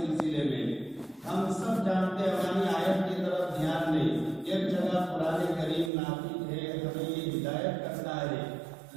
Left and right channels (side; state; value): left; drops out; at 5.9 s